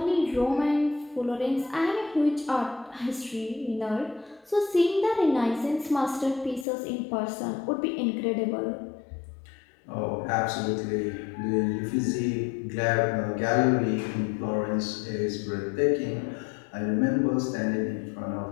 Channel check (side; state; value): right; drops out; at 6.7 s